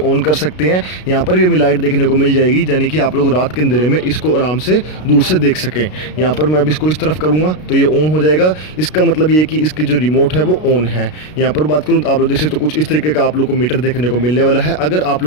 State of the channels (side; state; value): right; late; 33 ms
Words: ऑन कर सकते हैं, यहाँ पर भी हमें लाइट देखने को मिल जाएगी, यानी कि आप लोग रात के अंधेरे में इसको आराम से दूर से देख सकें। यहाँ पर मैं अब इसको इस तरफ करूँगा तो ये ऑन हो जाएगा। इसका मतलब ये कि इसकी जो रिमोट है वो ऑन है। यहाँ पर बात करूँ तो आप लोग देख सकते हो कुछ इस तरीके का आप लोग को मीटर देखने को मिलने वाला है। अगर आप